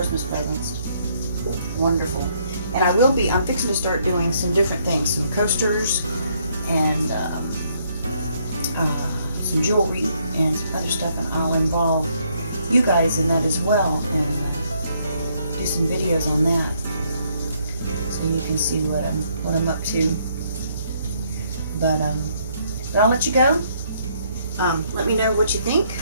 presents. Wonderful. And I'm fixing to start doing some different things, some coasters and some jewelry and some other stuff, and I'll involve you guys in that as well, and do some videos on that, so you can see what I'm up to. But I'll let you go. Let me know what you think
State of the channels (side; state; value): both; inverted; correlation -0.70